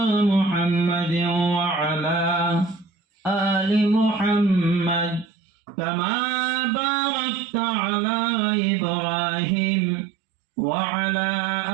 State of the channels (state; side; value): drops out; left; at 5.2 s